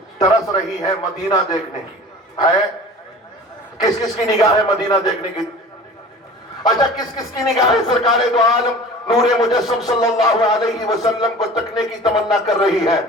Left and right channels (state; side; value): normal; both; correlation 0.40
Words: ترس رہی ہے مدینہ دیکھنے کی، ہے؟ کس کس کی نگاہ ہے مدینہ دیکھنے کی؟ اچھا کس کس کی نگاہ سرکار دو عالم نور مجسم صلی اللہ علیہ وسلم کو تکنے کی تمنا کر رہی ہے؟